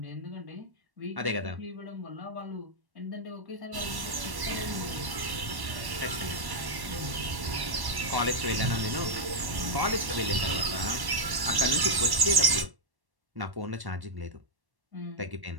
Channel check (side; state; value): left; late; 1.1 ms